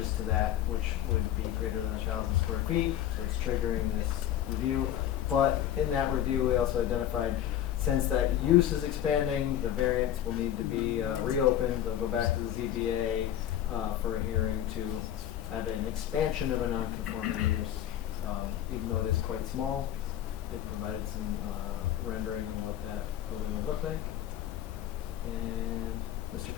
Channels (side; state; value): right; quieter; 11.3 dB